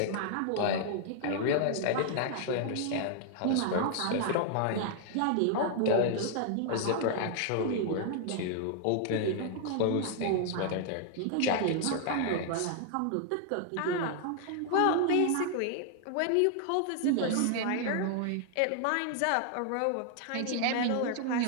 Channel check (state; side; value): different; both; correlation 0.00